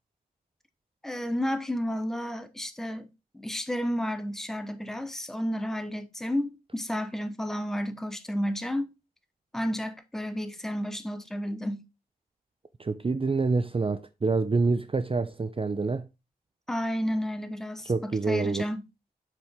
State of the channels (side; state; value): both; normal; correlation 0.89